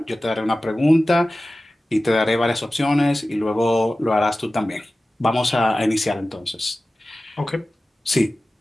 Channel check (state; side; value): normal; both; correlation 0.96